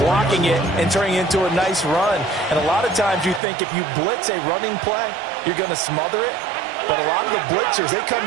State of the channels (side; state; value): left; drops out; at 3.4 s